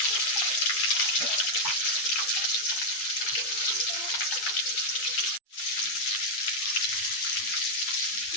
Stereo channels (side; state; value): right; late; 8.5 ms